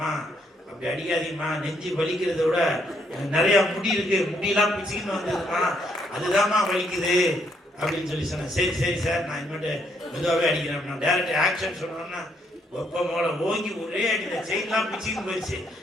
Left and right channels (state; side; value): normal; both; correlation 0.72